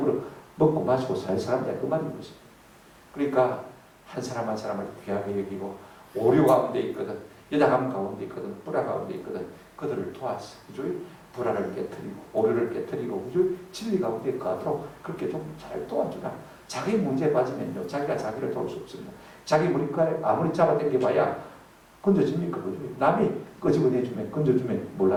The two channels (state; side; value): identical; both; correlation 1.00